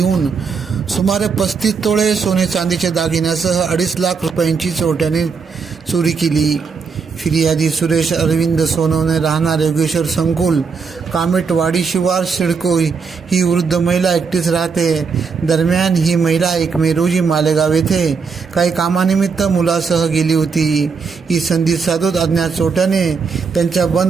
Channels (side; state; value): left; quieter; 5.4 dB